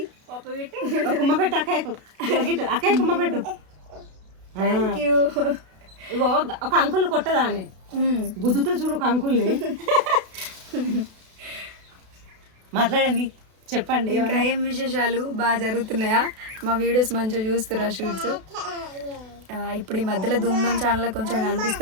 కుమ్మ పెట్టు. అక్కయ్యకు అక్కయ్య కుమ్మ పెట్టు. Thank you. ఇగో ఒక అంకుల్ కొట్టదా అని గుద్దుతో చూడు ఒక అంకుల్ని. మాట్లాడండి, చెప్పండి. ఇంకా ఏం విశేషాలు బాగా జరుగుతున్నాయా? మా వీడియోస్ మంచిగా చూస్తురా షూట్స్? ఇప్పుడు ఈ మధ్యలో ధూమ్ధామ్ ఛానల్ కొంచెం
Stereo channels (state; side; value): late; left; 32 ms